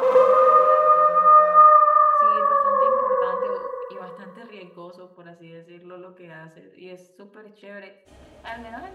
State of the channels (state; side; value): identical; both; correlation 1.00